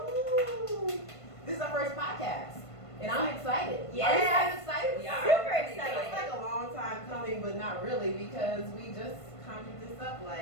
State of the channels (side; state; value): right; late; 1.5 ms